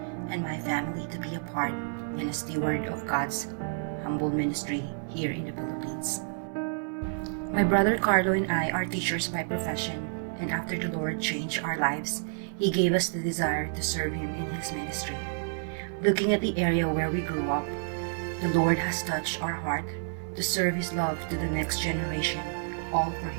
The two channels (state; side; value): silent; left; 57 dB below the other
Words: and my family to be a part and a steward of God's humble ministry here in the Philippines. My brother Carlo and I are teachers by profession, and after the Lord changed our lives, He gave us the desire to serve Him in His ministry. Looking at the area where we grew up, the Lord has touched our heart to serve His love to the next generation, all for